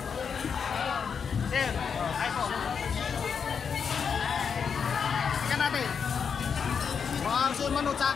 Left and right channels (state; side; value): quieter; right; 6.5 dB